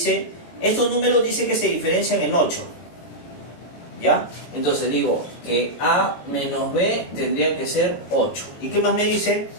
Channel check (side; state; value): right; late; 18 ms